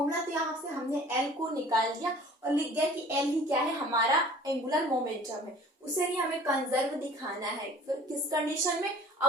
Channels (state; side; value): normal; both; correlation 0.48